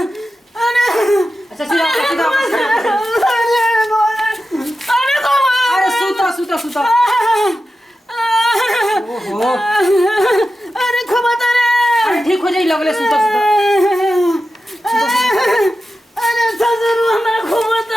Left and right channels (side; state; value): both; normal; correlation 0.91